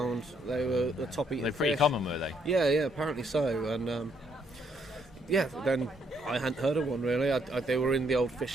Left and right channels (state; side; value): normal; both; correlation 0.71